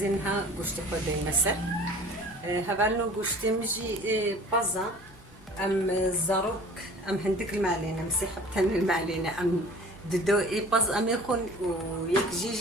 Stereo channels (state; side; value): normal; both; correlation 0.46